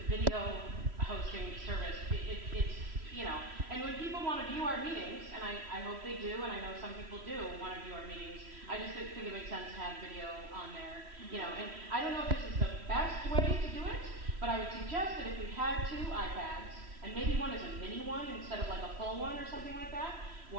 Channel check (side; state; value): left; late; 3.1 ms